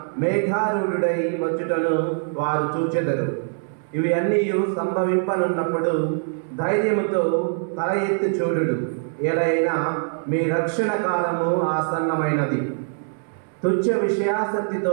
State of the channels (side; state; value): left; silent; digital silence